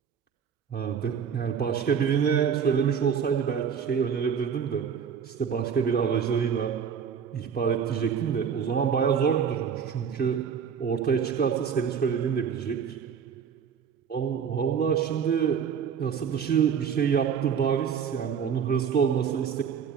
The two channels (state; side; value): quieter; left; 7.2 dB